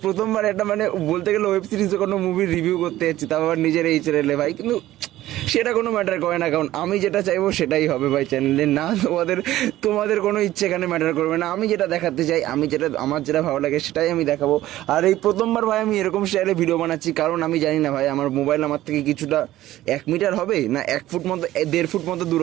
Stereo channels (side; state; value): left; quieter; 14.9 dB